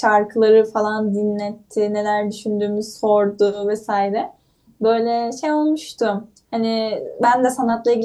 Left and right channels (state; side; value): identical; both; correlation 1.00